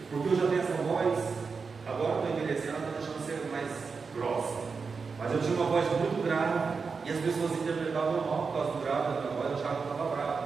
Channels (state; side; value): quieter; left; 5.0 dB